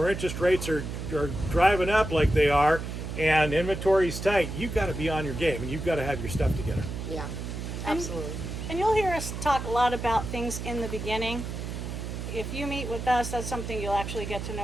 interest rates are driving up like they are and inventory's tight, you've got to be on your game and you've got to have your stuff together. Yeah, absolutely. And you'll hear us talk a lot about things in the beginning. If you meet with us, that's something you'll actually get to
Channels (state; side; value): noise; right; hum, 6 dB below the sound